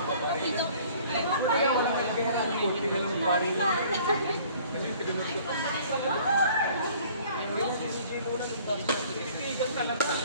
ba rin? Dito. Kaya wala may pera ng kunti na lang pari na. Kasi tinunod ko. Yung si CJ muna nung dagdag. Titigan talaga.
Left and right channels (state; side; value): inverted; both; correlation -0.53